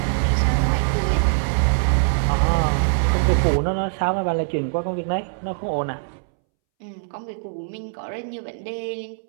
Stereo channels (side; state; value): left; silent; 64 dB below the other